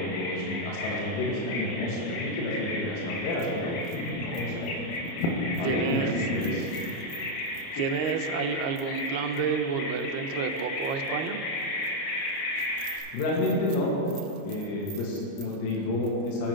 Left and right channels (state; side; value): late; right; 29 ms